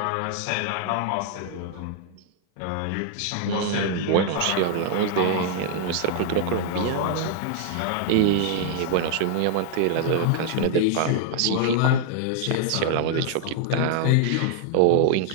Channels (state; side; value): different; both; correlation 0.00